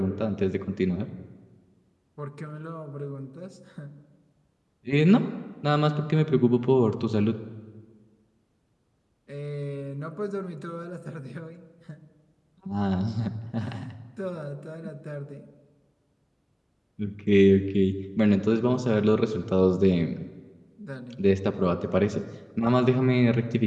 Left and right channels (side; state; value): both; identical; correlation 1.00